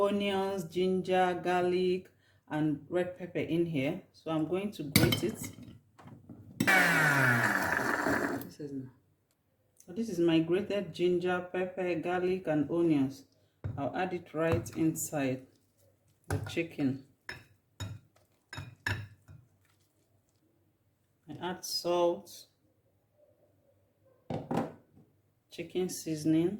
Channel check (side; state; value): both; identical; correlation 1.00